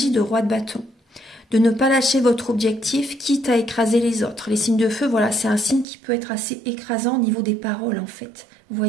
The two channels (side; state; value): left; drops out; at 5.9 s